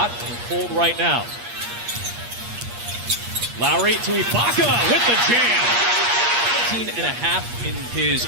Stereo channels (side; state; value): left; late; 8.5 ms